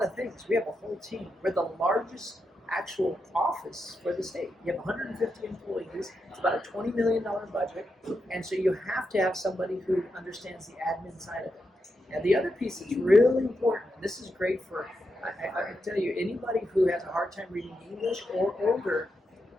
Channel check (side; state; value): both; normal; correlation 0.85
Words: of things. We have a whole team. We're the largest actual office for the state. You have 150 employees. It's about a $20 million budget. And so you have to have somebody who understands the admin side of it. And the other piece that's really important, and this is great for, I can tell you, anybody who has a hard time reading English or older,